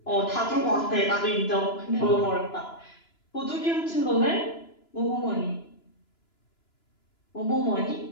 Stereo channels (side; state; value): right; late; 2.9 ms